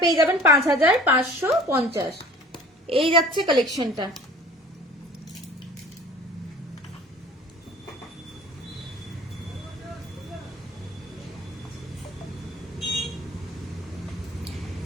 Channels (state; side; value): normal; both; correlation 0.47